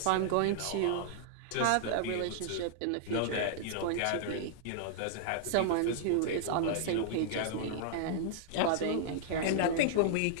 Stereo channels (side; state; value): both; different; correlation -0.01